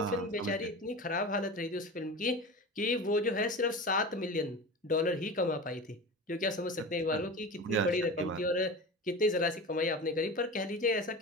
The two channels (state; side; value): normal; both; correlation 0.30